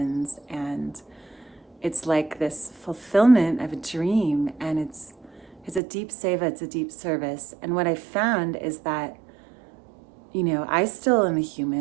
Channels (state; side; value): drops out; left; at 5.8 s